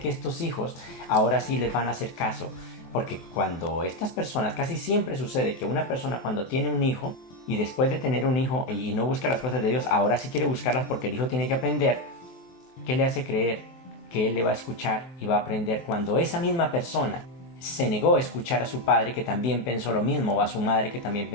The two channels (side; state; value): right; late; 23 ms